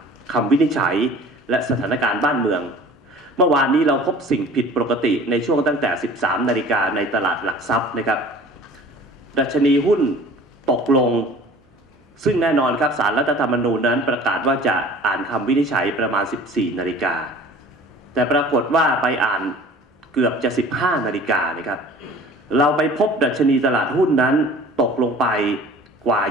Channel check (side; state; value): both; normal; correlation 0.45